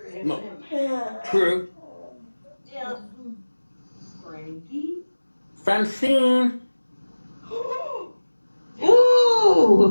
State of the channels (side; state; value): both; inverted; correlation -1.00